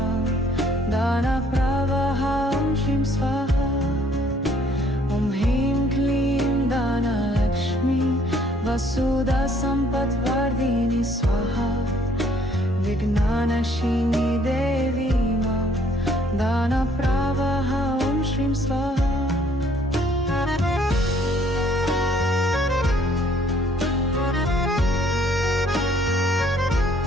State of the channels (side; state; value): both; normal; correlation 0.62